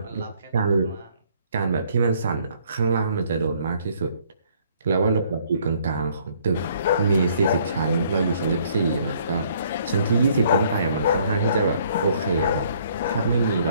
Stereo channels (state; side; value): inverted; both; correlation -0.63